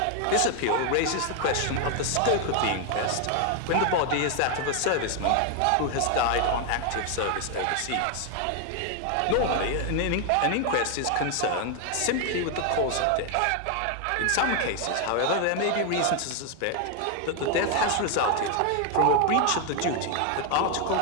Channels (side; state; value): both; different; correlation 0.01